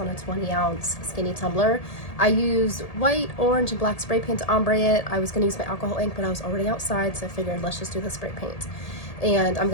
a 20-ounce skinny tumbler. I used white, orange, and black spray paint to ombre it. I was going to use my alcohol ink, but I was already outside, so I figured let's just do the spray paint. And I'm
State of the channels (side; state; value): right; late; 1.8 ms